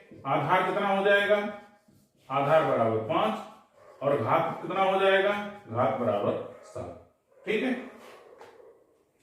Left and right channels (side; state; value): both; identical; correlation 1.00